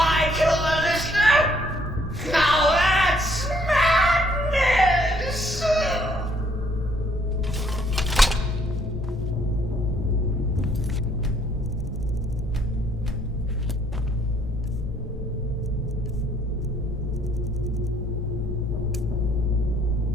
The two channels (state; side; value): normal; both; correlation 0.65